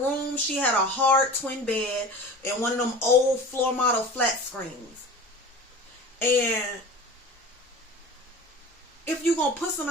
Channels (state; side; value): normal; both; correlation 0.37